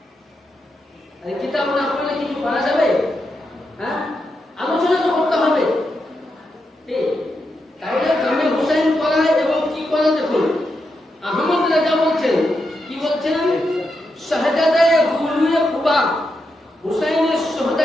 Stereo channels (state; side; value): normal; both; correlation 0.85